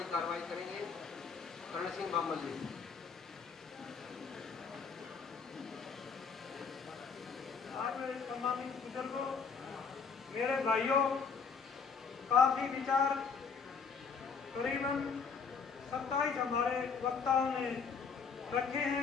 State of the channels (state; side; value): quieter; right; 5.7 dB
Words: कार्रवाई करेंगे। कर्ण सिंह बामल जी। आज मेरे सम्मानित बुजुर्गों, मेरे भाइयों, काफी विचार करीबन 27 हमारे वक्ताओं ने रखे